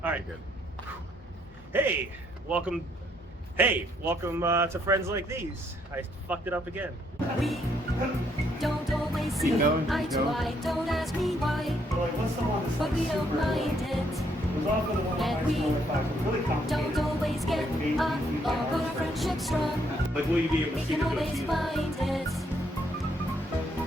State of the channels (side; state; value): both; normal; correlation 0.71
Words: All right. Good. Hey, welcome to Friends Like These. I fucked it up again. We don't always see eye to eye. Don't ask me why, but we don't mind it. And we don't always get on, but our friendship's strong. Like, will you be able We to see can the always goatee? find it.